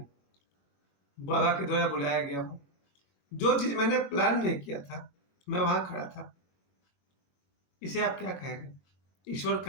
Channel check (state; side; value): late; right; 21 ms